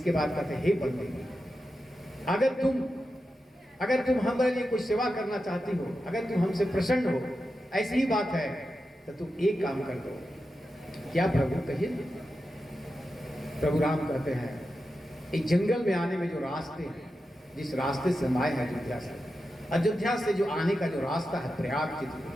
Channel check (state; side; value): normal; both; correlation 0.90